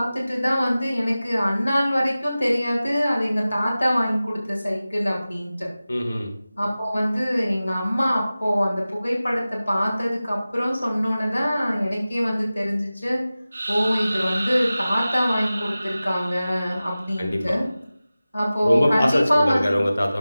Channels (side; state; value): both; inverted; correlation -0.96